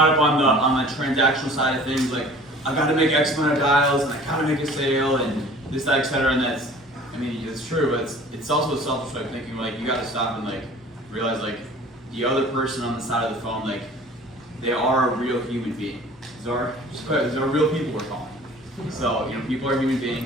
up on the transactional side of things, like I got to make X amount of dials and I got to make a sale and this, that, etc. And that's, I mean, it's true, but it's also a selfish way of thinking. Like you got to stop and like realize like the other person on the side of the phone, like they are a real human being. These are real people we're calling. So you know, people are human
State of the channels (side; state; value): both; normal; correlation 0.47